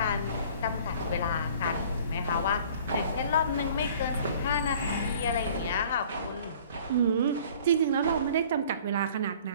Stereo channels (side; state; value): both; inverted; correlation -0.50